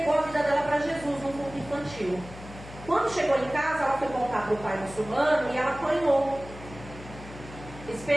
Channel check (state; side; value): noise; left; hum, 15 dB below the sound